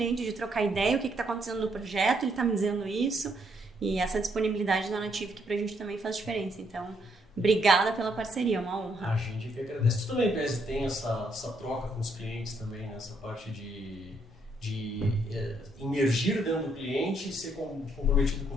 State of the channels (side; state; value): both; normal; correlation 0.73